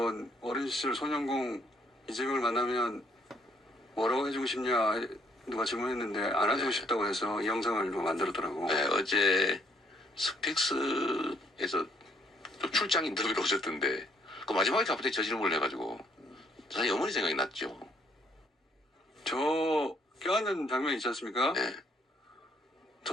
어린 시절 소년공 이재명을 만나면 뭐라고 해주고 싶냐 누가 질문했는데 안 해주고 싶다고 해서 이 영상을 누가 만들었더라고. 네, 어제 스픽스에서 또 출장 인터뷰를 오셨던데 그 마지막에 갑자기 저 질문을 해가지고 사실 어머니 생각이 났죠. 저 껴안는 장면 있지 않습니까? 네.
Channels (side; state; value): both; normal; correlation 0.67